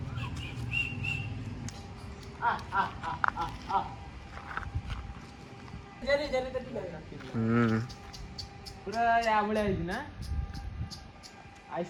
पूरा या बळे आइज ना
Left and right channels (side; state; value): both; identical; correlation 1.00